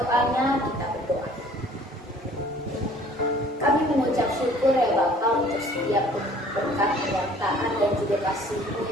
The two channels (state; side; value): normal; both; correlation 0.53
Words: kita berdoa. Kami mengucap syukur ya Bapa untuk setiap berkat, penyertaan dan juga kasih-Mu